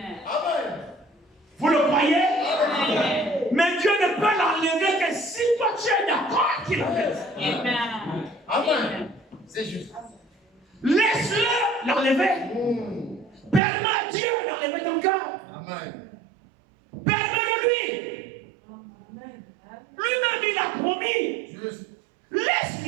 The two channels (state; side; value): drops out; left; at 13.6 s